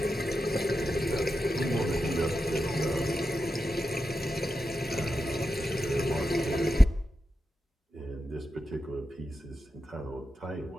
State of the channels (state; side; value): normal; both; correlation 0.89